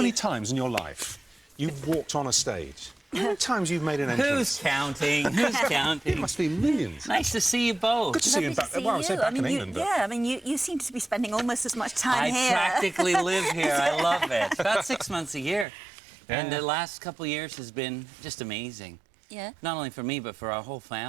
times in your life you've walked on a stage. How many times you've made an entrance? Who's counting? Who's counting? It must be millions. Nice to see you both. Good to see you back. Well, I would say back in England. Yeah, I mean, you seem to be spending almost as much time here. I practically live here. I love it. About 6 months a year. Yeah. And the last couple of years has been just amazing. Yeah. Not only for me, but for our whole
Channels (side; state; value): left; drops out; at 15.7 s